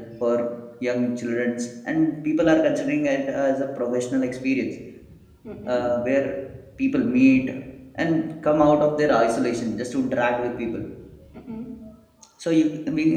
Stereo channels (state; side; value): identical; both; correlation 1.00